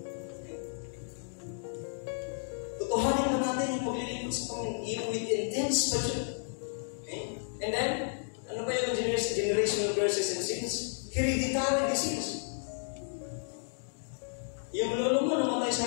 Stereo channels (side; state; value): right; silent; digital silence